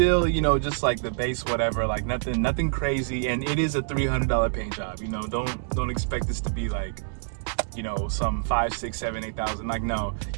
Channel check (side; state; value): left; silent; digital silence